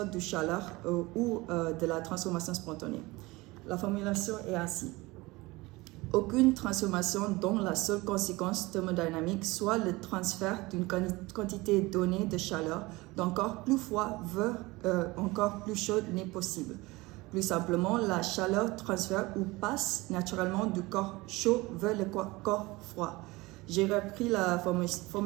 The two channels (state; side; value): quieter; left; 21.9 dB